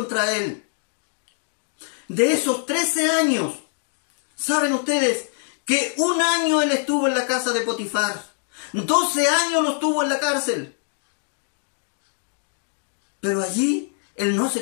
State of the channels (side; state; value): right; silent; 63 dB below the other